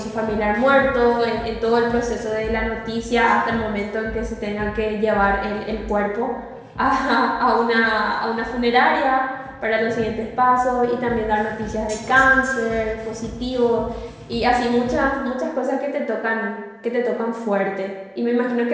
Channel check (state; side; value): identical; both; correlation 1.00